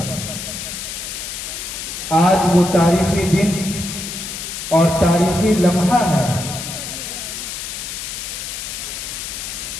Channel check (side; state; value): left; noise; hiss, 7 dB below the sound